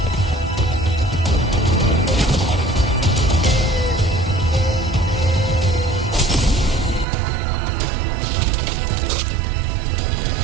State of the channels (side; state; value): left; drops out; at 7.1 s